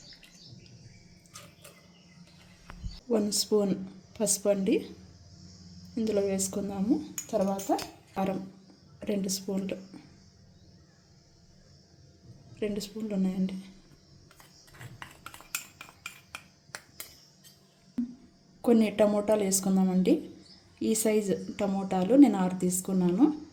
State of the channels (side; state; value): both; identical; correlation 1.00